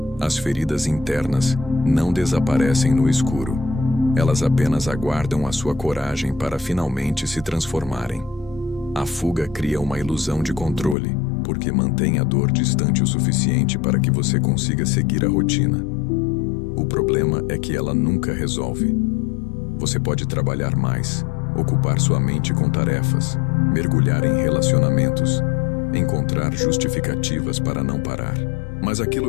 As feridas internas não desaparecem no escuro. Elas apenas aguardam a sua coragem para finalmente se transformarem. A fuga cria uma ilusão de controle, porque mantém a dor distante o suficiente para que você consiga seguir a rotina. O problema é que ela nunca resolve. Você pode trabalhar mais, ocupar sua mente com tarefas, mergulhar em relacionamentos, encontrar justificativas para não parar. Mas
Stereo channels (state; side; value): drops out; right; at 11.0 s